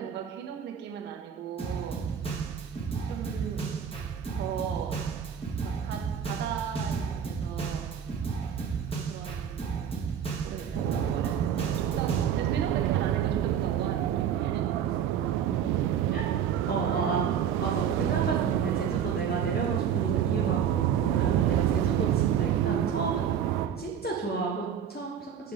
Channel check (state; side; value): quieter; left; 8.3 dB